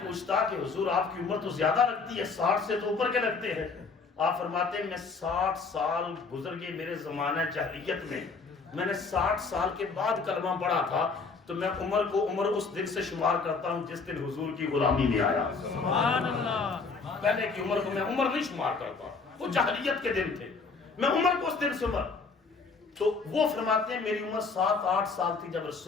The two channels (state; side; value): quieter; right; 4.6 dB